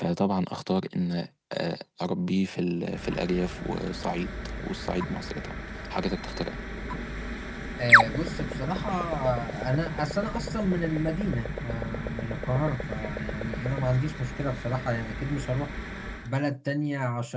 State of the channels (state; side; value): identical; both; correlation 1.00